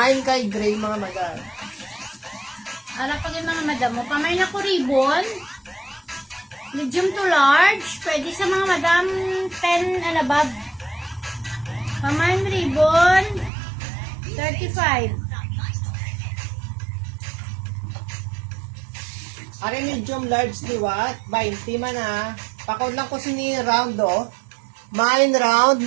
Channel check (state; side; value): drops out; left; at 13.5 s